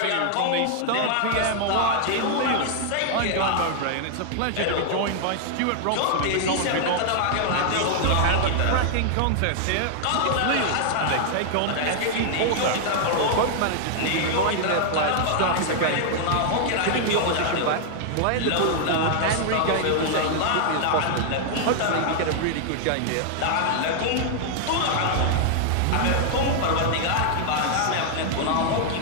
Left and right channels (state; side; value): different; both; correlation -0.01